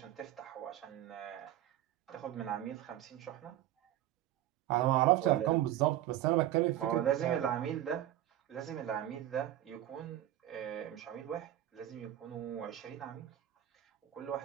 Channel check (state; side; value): quieter; left; 13.0 dB